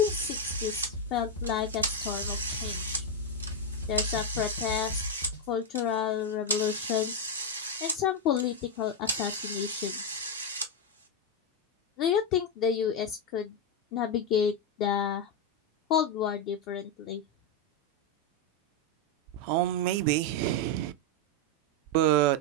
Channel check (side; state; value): both; normal; correlation 0.04